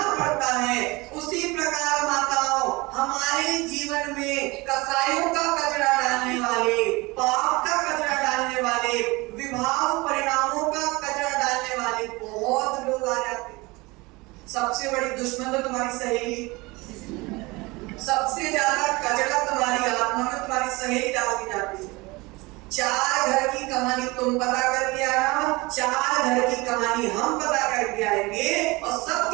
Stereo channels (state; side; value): quieter; left; 23.6 dB